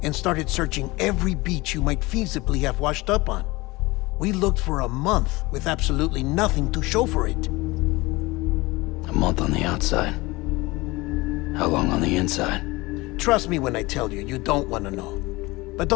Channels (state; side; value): quieter; right; 22.1 dB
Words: and started searching every beach you might feasibly have washed up on. We looked for a month with absolutely nothing to show for it. A month on the outside. How long on the inside? Trust me when I tell you, you don't want to know. But